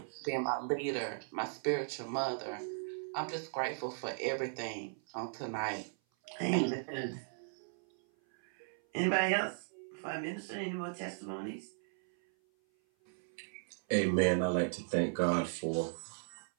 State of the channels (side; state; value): left; silent; 53 dB below the other